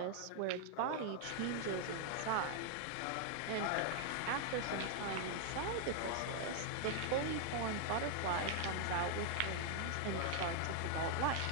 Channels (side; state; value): both; different; correlation 0.00